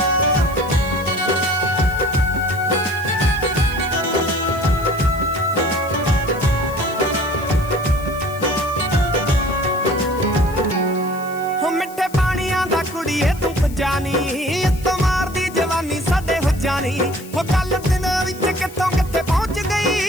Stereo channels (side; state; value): left; noise; hiss, 19 dB below the sound